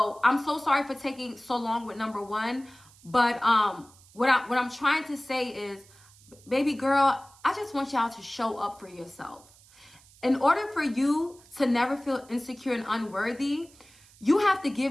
I'm so sorry for taking so long with number one. But what I'm trying to say is, baby girl, I just want y'all to show up for yourself. In order for you to never feel insecure and unworthy, you have to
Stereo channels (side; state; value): right; noise; hiss, 26 dB below the sound